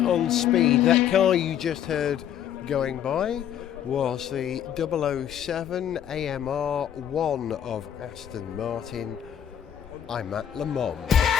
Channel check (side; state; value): right; quieter; 9.9 dB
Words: Speed. That car you just heard going by was the 007 AMR 1 of Aston Martin. I'm at Le Mans.